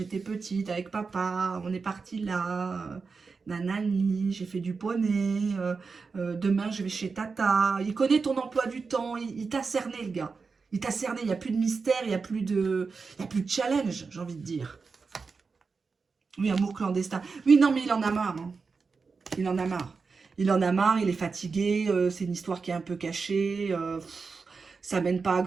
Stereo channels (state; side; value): quieter; left; 4.8 dB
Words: petite, avec papa, on est parti là, nanani, j'ai fait du poney, demain je vais chez tata. Il connaît ton emploi du temps, il t'a cerné le gars. Il t'a cerné, il n'y a plus de mystère, il n'y a plus de challenge, j'ai envie de dire. Oui, amour clandestin. Oui, non, mais il en a marre. Hein. Il en a marre. Il en a marre, il est fatigué, c'est une histoire qui est un peu cachée, ça mène pas à